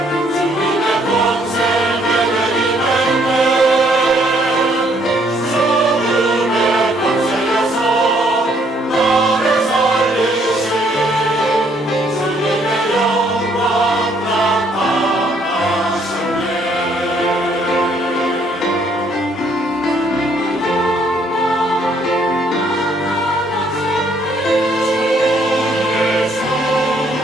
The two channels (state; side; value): normal; both; correlation 0.67